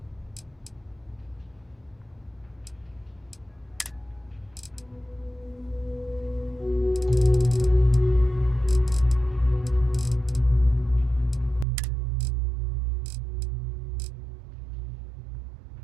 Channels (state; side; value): drops out; left; at 11.7 s